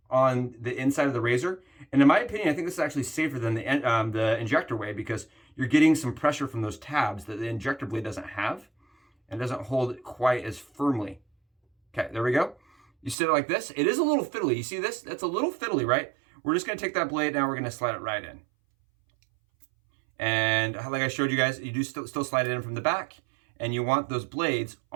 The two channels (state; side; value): drops out; left; at 13.2 s